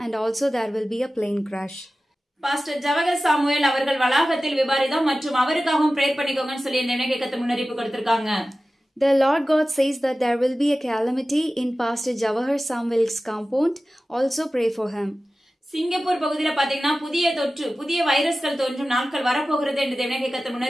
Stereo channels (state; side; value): normal; both; correlation 0.95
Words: and also there will be a plane crash. Pastor Jawahar Samuel அவர்கள் வளாகத்தில் விபரீதம் மற்றும் அவருக்காகவும் பிரேயர் பண்ணிக்கோங்கன்னு சொல்லி தேவனாகிய கர்த்தர் முன்னறிவிப்பு கொடுத்திருக்காங்க. The Lord God says that there will be a calamity in Pastor Jawahar Samuel's compound. Also pray for him. Singapore பகுதியில பாத்தீங்கன்னா புதிய வைரஸ்கள் தோன்றும் நாட்கள் வரப்போகிறது என்று தேவனாகிய கர்த்தர்